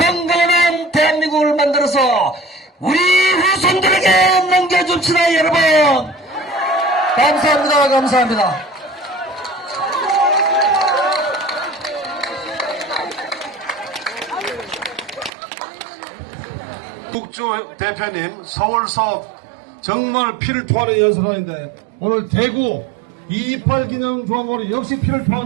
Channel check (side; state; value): left; drops out; at 15.3 s